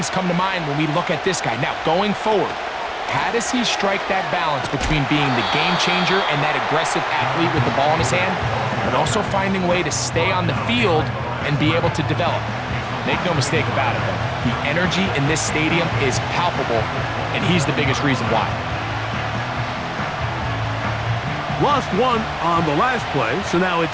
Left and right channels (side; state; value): both; identical; correlation 1.00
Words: come to mind when we look at this guy. Now, going forward, how does he strike that balance between being the game changer and that aggressive athlete with the ball in his hand, but also finding a way to stay on the field and be able to develop? Make no mistake about it, though. The energy in this stadium is palpable, and he's the biggest reason why. Lost one on the last play, so now